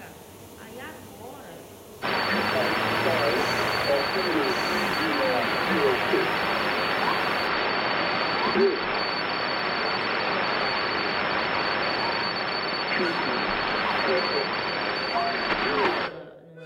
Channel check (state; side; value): identical; both; correlation 1.00